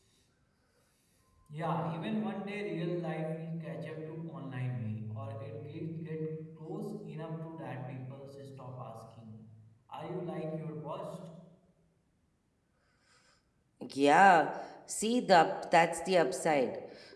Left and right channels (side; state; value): both; identical; correlation 1.00